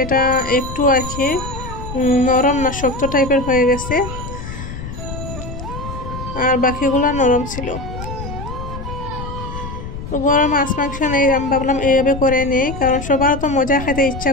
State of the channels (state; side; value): noise; left; rumble, 9 dB below the sound